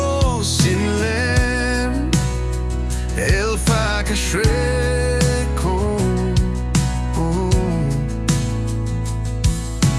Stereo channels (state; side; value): identical; both; correlation 1.00